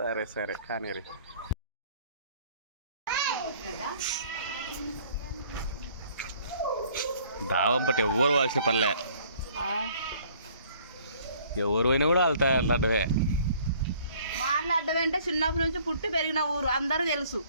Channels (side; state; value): both; inverted; correlation -0.57